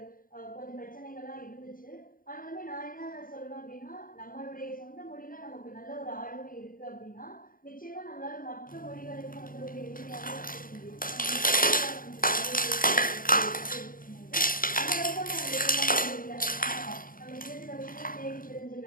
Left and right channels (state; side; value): late; right; 0.41 ms